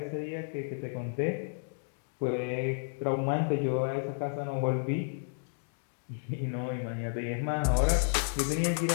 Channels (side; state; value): right; silent; digital silence